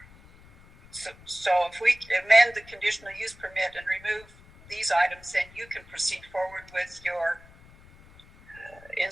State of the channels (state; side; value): noise; left; rumble, 23 dB below the sound